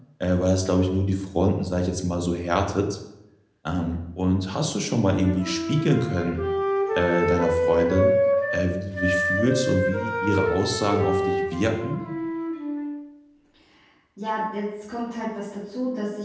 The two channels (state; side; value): identical; both; correlation 1.00